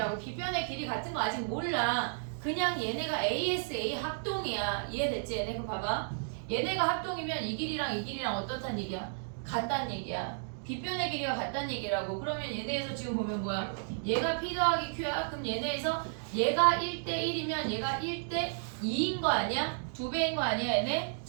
빗변의 길이 같은 거 아직 몰라. 그냥 얘네가 ASA 합동이야. 이해됐지 얘네? 그럼 봐봐. 얘네가 합동이면 이 길이랑 어떻단 얘기야? 같단 얘기야. 빗변의 길이가 같단 얘기라고. 그러면 얘네에서 지금 보면 뭐야? 얘가 P 더하기 Q야? 그럼 얘네에서 얘가 1대1이면 얘가 1대2인 거 아니야? 2배인 거 아니야 얘네?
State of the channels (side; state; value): left; silent; digital silence